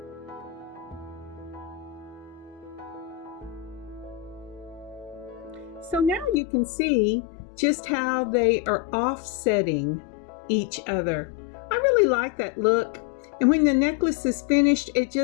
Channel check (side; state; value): right; drops out; at 6.4 s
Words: So now you can see just how they are offsetting each other. I really like that look, and when the necklace is finished, it